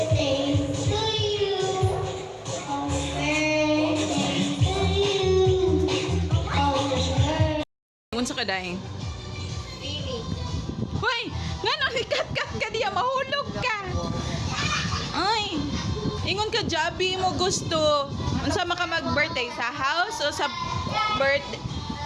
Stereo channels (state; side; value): identical; both; correlation 1.00